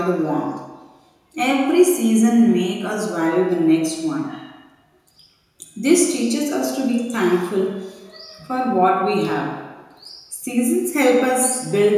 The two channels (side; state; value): both; identical; correlation 1.00